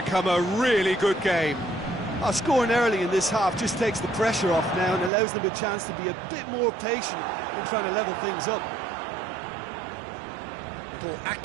a really good game. Scoring early in this half just takes the pressure off now and allows them a chance to be a bit more patient in trying to level things up. Little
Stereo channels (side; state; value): left; drops out; at 5.1 s